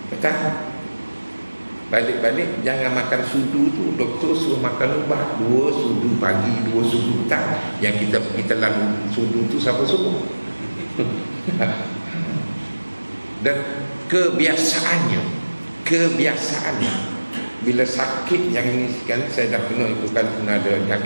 petang. Balik-balik jangan makan sudu tu. Doktor suruh makan ubat 2 sudu pagi, 2 sudu petang. Yang kita pergi telan sudu tu siapa suruh? Dan kebiasaannya bila sakit yang ini kan, saya dah kena itu kan, pernah ada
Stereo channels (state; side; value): inverted; both; correlation -1.00